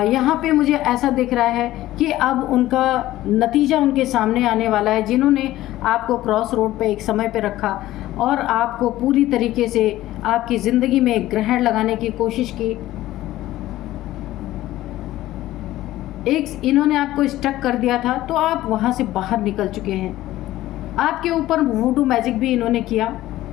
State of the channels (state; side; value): quieter; right; 15.4 dB